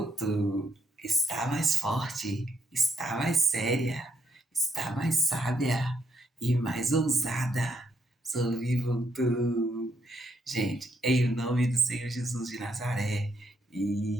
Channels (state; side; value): normal; both; correlation 0.75